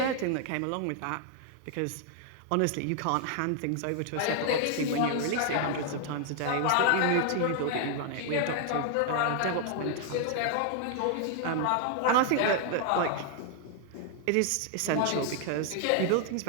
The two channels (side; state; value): both; different; correlation 0.00